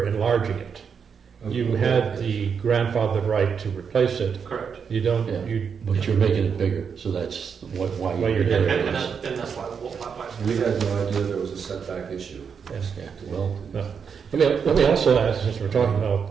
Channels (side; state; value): left; quieter; 6.5 dB